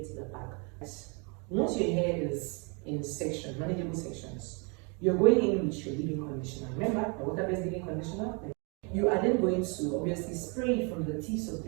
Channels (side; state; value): left; quieter; 34.0 dB